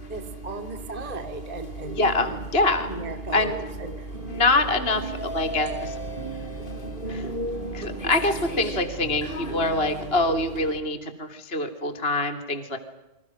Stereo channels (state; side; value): late; right; 2.8 ms